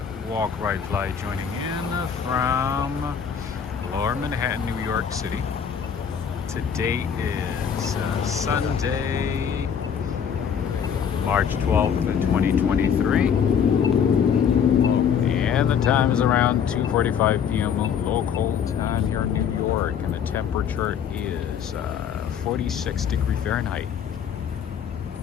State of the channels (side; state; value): right; quieter; 7.6 dB